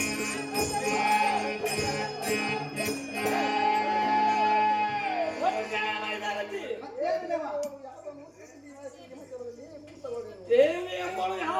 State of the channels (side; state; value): both; identical; correlation 1.00